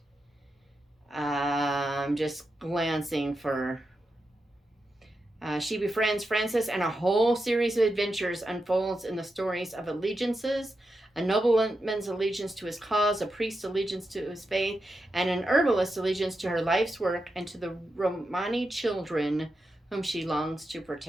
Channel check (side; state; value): both; normal; correlation 0.88